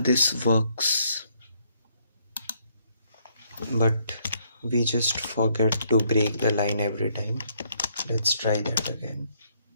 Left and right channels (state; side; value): inverted; both; correlation -0.70